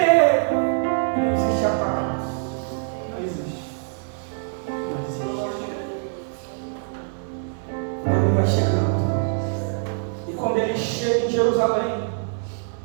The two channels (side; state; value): left; silent; digital silence